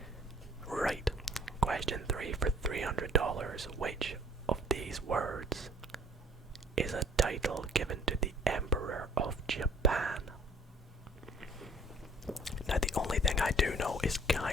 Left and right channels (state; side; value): normal; both; correlation 0.55